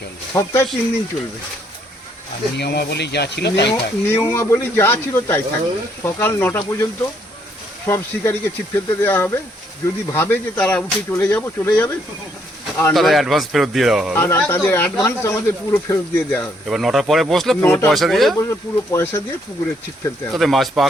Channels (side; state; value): both; normal; correlation 0.70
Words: সপ্তাহে 3 দিন চলবে। আর নিয়মাবলী যা ছিল তাই থাকবে। নিয়মাবলী যা ছিল তাই থাকবে। সকাল 9টা পর্যন্ত সব শিকারীকে ছিপ ফেলতে দেওয়া হবে। যদি ভাবে যে তারা উঠে চলে যাবে, আর তাদের অ্যাডভান্স ফেরত দিয়ে দেওয়া হবে। আর তাদের অ্যাডভান্স আমাদের পুরো ফেরত দিয়ে দেওয়া হবে। এবার 9টার পরে বসলে পুরো পয়সা দিয়ে পুকুরে ছিপ ফেলতে হবে। তাদের মাছ